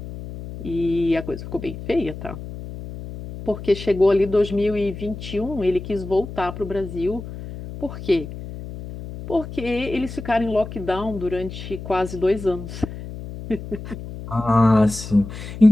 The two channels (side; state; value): left; noise; hum, 11 dB below the sound